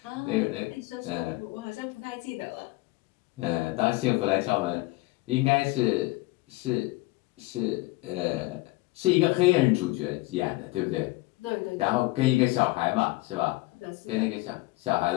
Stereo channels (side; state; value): right; quieter; 21.2 dB